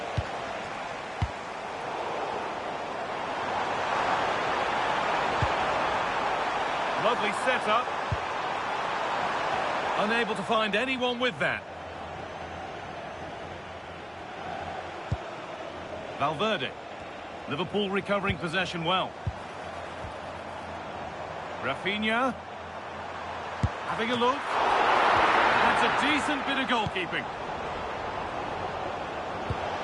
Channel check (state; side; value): identical; both; correlation 1.00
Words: Lovely setup. Unable to find anyone with that. Valverde. Liverpool recovering possession well. Rafinha. Having a look. That's a decent bit of goalkeeping.